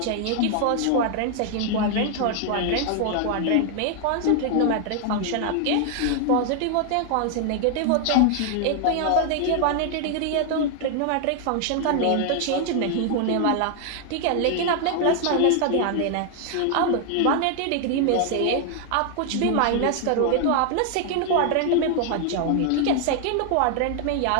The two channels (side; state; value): both; different; correlation 0.00